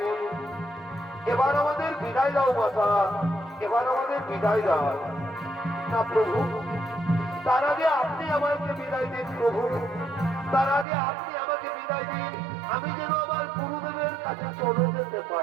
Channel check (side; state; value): left; drops out; at 10.9 s